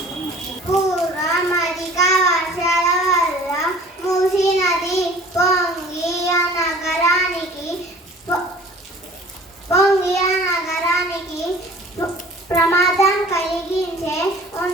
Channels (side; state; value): both; normal; correlation 0.47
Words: పూర్వం అధిక వర్షాల వల్ల మూసీ నది పొంగి ఆ నగరానికి ప్రమాదం కలిగించే